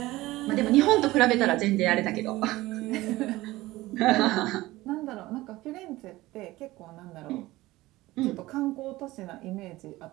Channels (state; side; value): quieter; left; 18.4 dB